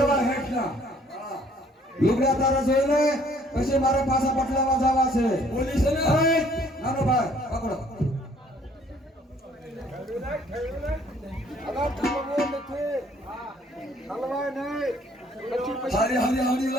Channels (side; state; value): both; normal; correlation 0.60